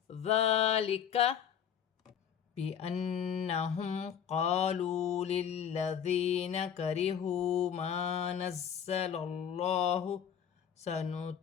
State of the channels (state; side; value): quieter; right; 8.4 dB